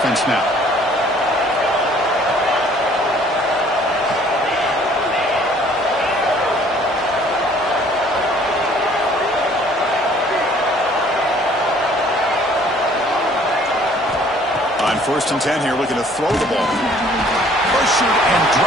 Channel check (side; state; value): both; normal; correlation 0.57